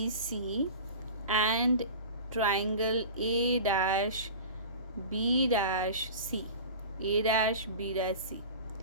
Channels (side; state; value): both; inverted; correlation -0.35